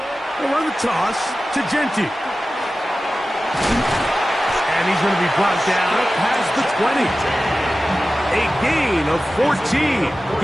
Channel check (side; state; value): both; normal; correlation 0.95